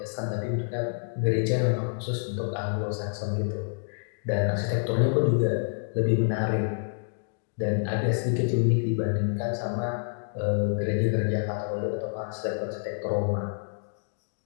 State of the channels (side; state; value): right; silent; digital silence